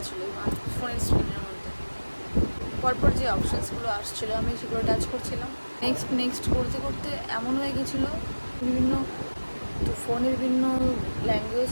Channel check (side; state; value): both; inverted; correlation -1.00